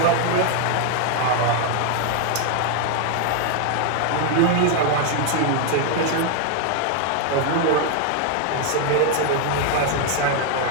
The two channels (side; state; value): both; different; correlation 0.00